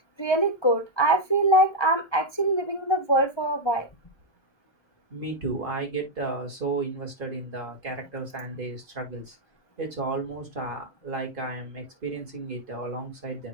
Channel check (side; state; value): right; late; 1.2 ms